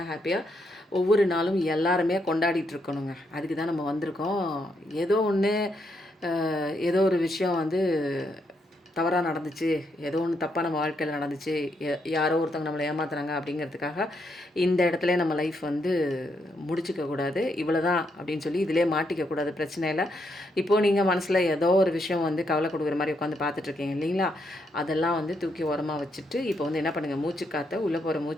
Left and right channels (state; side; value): normal; both; correlation 0.78